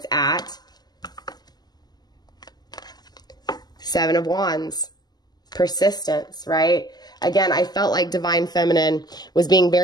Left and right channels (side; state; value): right; late; 0.20 ms